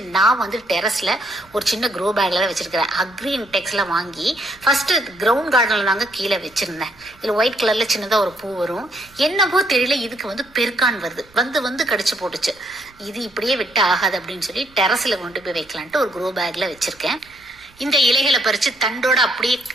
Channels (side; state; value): right; noise; rumble, 29 dB below the sound